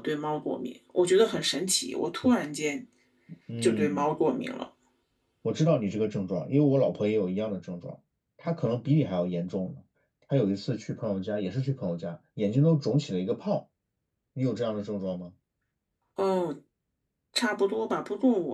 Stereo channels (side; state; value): both; identical; correlation 1.00